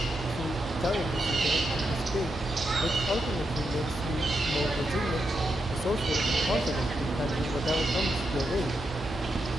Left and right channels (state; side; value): normal; both; correlation 0.84